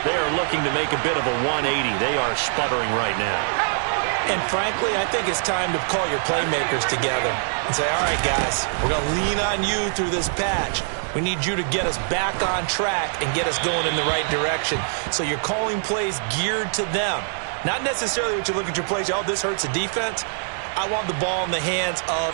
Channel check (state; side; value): silent; left; 63 dB below the other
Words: They are looking to make a bit of a 180. They are sputtering right now. And frankly, I think it's time to call your playmakers together and say, all right, guys, we're going to lean on you through this patch. We need you to get us back on track and get us going in the right direction. So you're calling plays geared to them. Not necessarily what you look at your plays, oh, this hurts the defense. I want the ball in the hands of